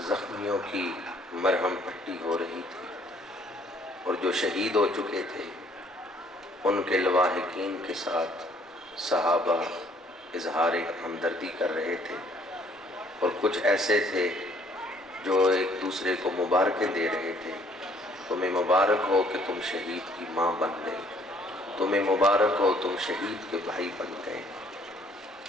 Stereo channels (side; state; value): both; normal; correlation 0.62